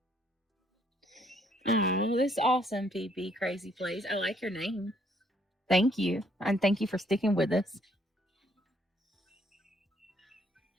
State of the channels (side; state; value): both; normal; correlation 0.67